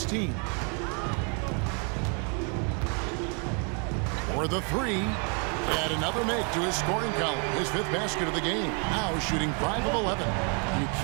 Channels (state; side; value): quieter; left; 37.7 dB